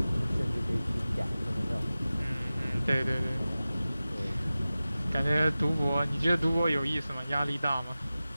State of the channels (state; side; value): inverted; both; correlation -0.96